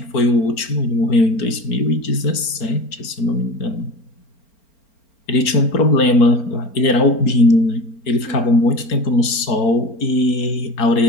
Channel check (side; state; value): right; late; 4.4 ms